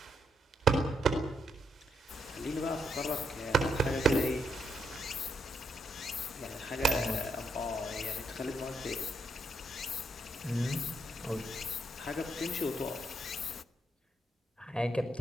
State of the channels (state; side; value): normal; both; correlation 0.78